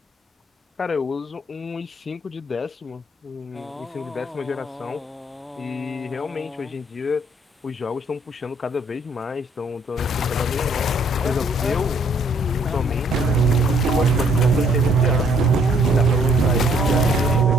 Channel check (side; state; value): both; normal; correlation 0.65